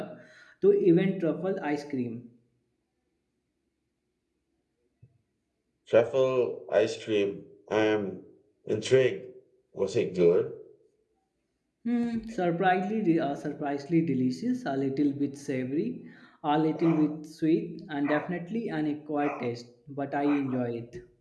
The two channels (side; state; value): both; identical; correlation 1.00